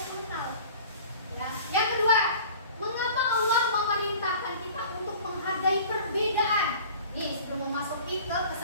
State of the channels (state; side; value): inverted; both; correlation -0.44